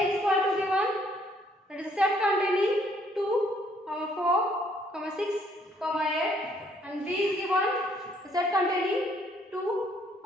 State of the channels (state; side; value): normal; both; correlation 0.66